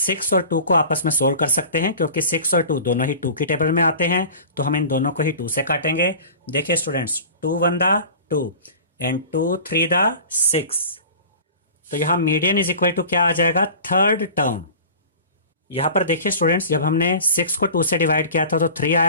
6 और 2 को आपस में सोल्व कर सकते हैं क्योंकि 6 और 2 दोनों ही 2 की टेबल में आते हैं, तो हम इन दोनों को ही 2 से काटेंगे। देखिए स्टूडेंट्स, 2 1 दा 2 एंड 2 3 दा 6। तो यहां मीडियन इज इक्वल टू क्या आ जाएगा? Third term. यहां पर देखिए स्टूडेंट्स, जब हमने 6 को 2 से डिवाइड किया था तो 3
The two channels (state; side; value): inverted; both; correlation -0.39